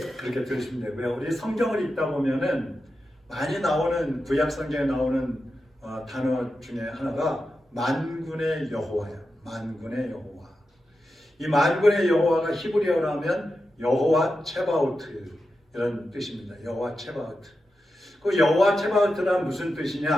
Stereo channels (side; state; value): both; normal; correlation 0.90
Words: 들으시면 되고요. 우리 성경을 읽다 보면은 많이 나오는, 구약 성경에 나오는 단어 중에 하나가 만군의 여호와야. 만군의 여호와. 이 만군의 여호와가 히브리어로 하면 여호와 체바오트 이런 뜻입니다. 여호와 체바오트. 그 여호와 체바오트란 무슨